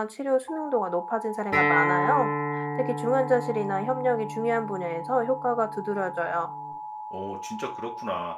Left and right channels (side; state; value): both; identical; correlation 1.00